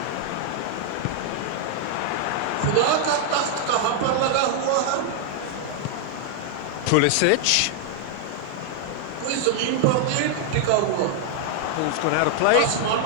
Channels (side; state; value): both; different; correlation 0.00